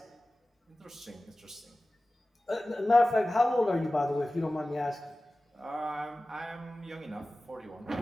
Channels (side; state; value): both; normal; correlation 0.96